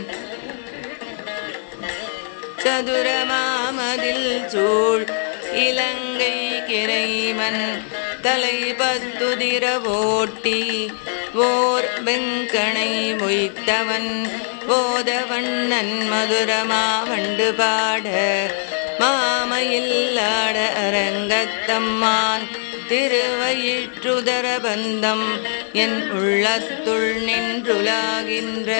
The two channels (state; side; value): silent; right; 65 dB below the other